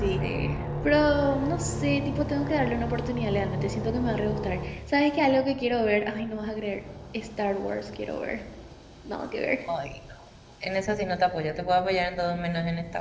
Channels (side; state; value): both; identical; correlation 1.00